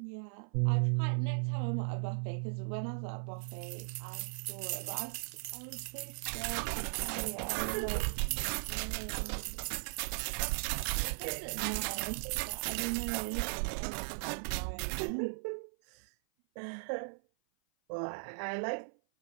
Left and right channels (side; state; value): left; silent; 53 dB below the other